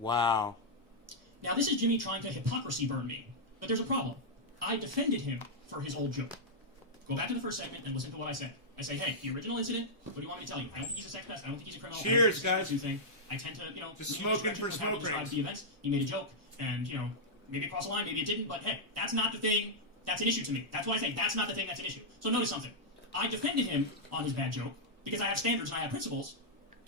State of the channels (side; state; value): both; normal; correlation -0.06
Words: Wow. Now, this is Jimmy trying to hypocrisy burn me. But there's a problem. I defended him for his old joke. Go back to the first segment and listen to what I said. I say, hey, the original incident, what do you want me to tell you? I don't think he's a sex pest. I don't think he's a criminal. Cheers, I don't think guys. he's a thing. I tend to, Just lean in this smoking direction for with how he smoke describes rings. the events. He made a joke, and, maybe it crossed the line, maybe it didn't, but hey, that's not the thing. That's an issue to me. That's why I say that's not the thing that's an issue. So notice something. I defended him on his bad joke because I have standards and I have principles,